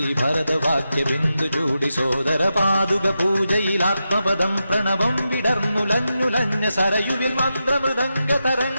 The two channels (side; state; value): both; inverted; correlation -0.89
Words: ബിന്ദു ചൂടി സോദര പാതുക പൂജയിൽ ആത്മപദം പ്രണവം വിടർന്നുലഞ്ഞുലഞ്ഞ സരയുവിൽ മന്ത്രമൃദംഗ